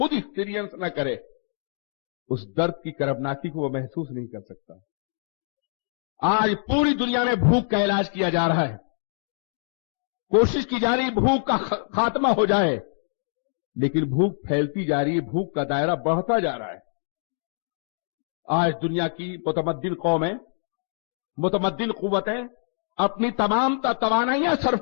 ایکسپیرینس نہ کرے اس درد کی کربناکی کو وہ محسوس نہیں کر سکتا. آج پوری دنیا میں بھوک کا علاج کیا جا رہا ہے، کوشش کی جا رہی بھوک کا خاتمہ ہو جائے، لیکن بھوک پھیلتی جا رہی ہے، بھوک کا دائرہ بڑھتا جا رہا ہے. آج دنیا کی متمدن قومیں، متمدن قوتیں اپنی تمام توانائیاں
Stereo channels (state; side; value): silent; right; digital silence